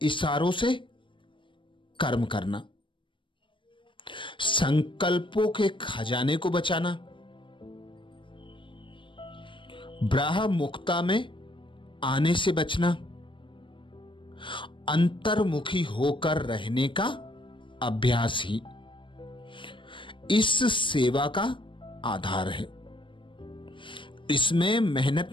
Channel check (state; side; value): late; right; 0.24 ms